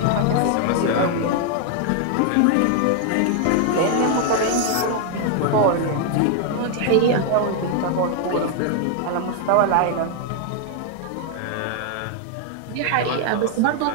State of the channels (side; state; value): both; different; correlation 0.00